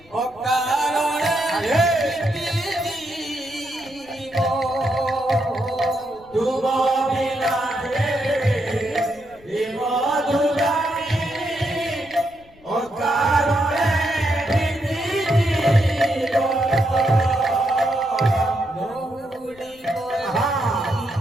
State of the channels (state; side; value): noise; left; rumble, 27 dB below the sound